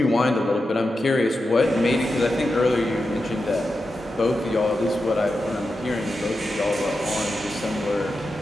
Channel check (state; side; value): normal; both; correlation 0.90